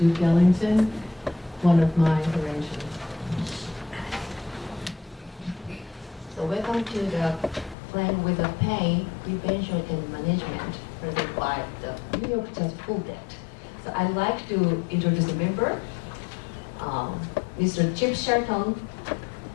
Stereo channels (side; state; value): right; drops out; at 7.8 s